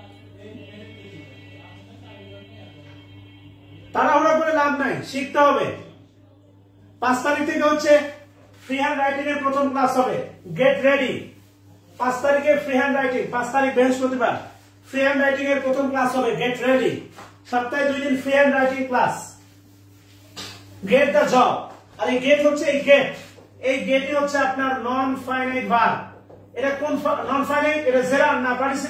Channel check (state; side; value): identical; both; correlation 1.00